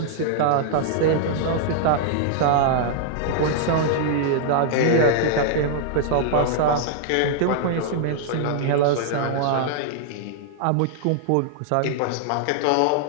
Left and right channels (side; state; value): both; different; correlation -0.01